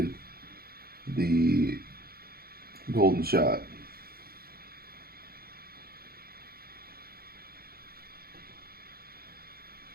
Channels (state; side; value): late; left; 0.44 ms